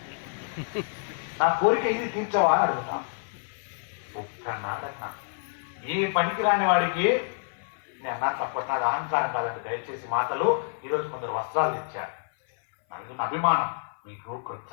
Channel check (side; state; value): right; silent; 57 dB below the other